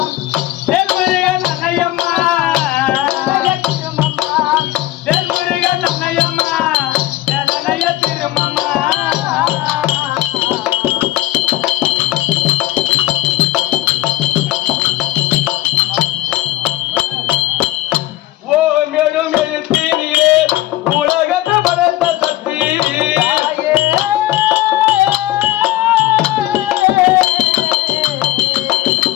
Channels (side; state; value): right; quieter; 16.0 dB